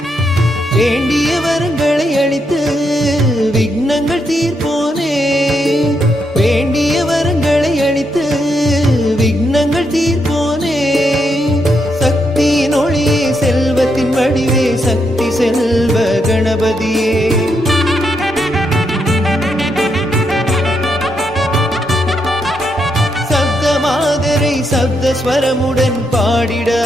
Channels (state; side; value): normal; both; correlation 0.80